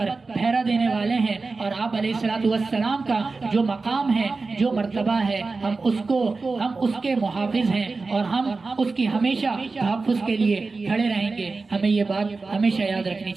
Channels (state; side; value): quieter; left; 3.9 dB